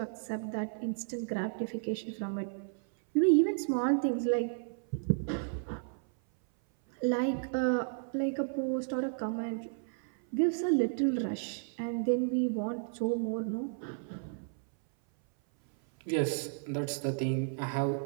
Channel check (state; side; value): silent; left; 56 dB below the other